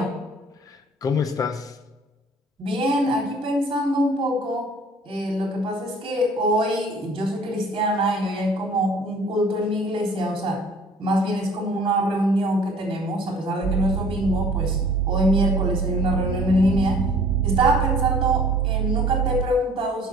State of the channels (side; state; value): both; normal; correlation 0.51